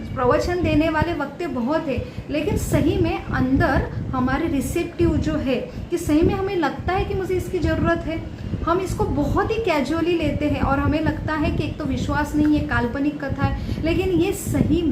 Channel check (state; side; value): identical; both; correlation 1.00